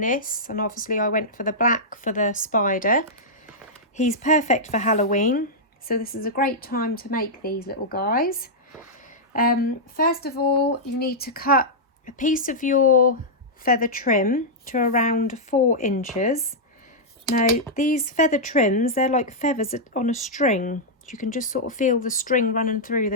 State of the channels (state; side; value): normal; both; correlation -0.08